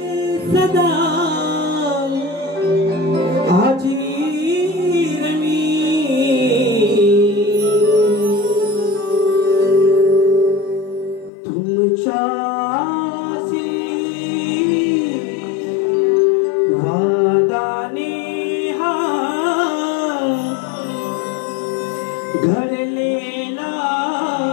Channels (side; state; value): right; drops out; at 11.3 s